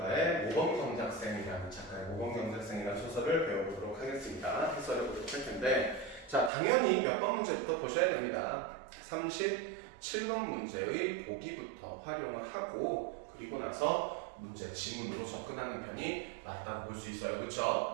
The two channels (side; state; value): left; drops out; at 6.5 s